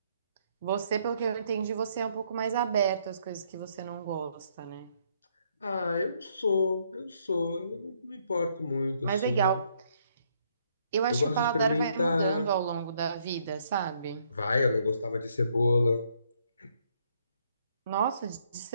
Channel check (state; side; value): inverted; both; correlation -0.70